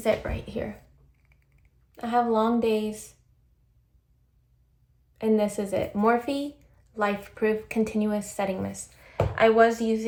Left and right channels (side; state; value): both; identical; correlation 1.00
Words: it right here. I have long days. And this is it. Morphe Life Proof Continuous Setting Mist.